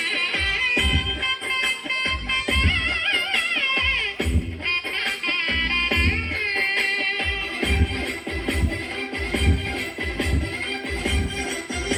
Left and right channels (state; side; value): identical; both; correlation 1.00